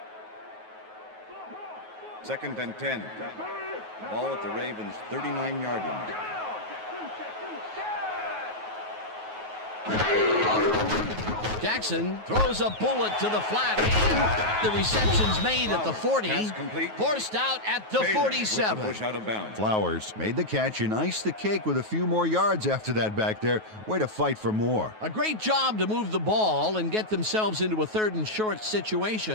Second and 10. Ball at the Ravens' 39-yard line. Jackson throws a bullet to the flat, and the reception's made at the 40, forced out at the 47. Push out of bounds. Flowers made the catch and iced the cake with a few more yards after that back there. Way to fight for more. A great job to move the ball and get themselves into a 3rd and short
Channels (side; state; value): left; late; 9.3 ms